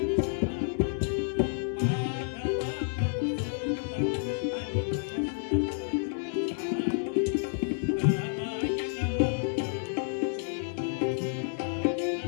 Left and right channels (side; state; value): right; silent; digital silence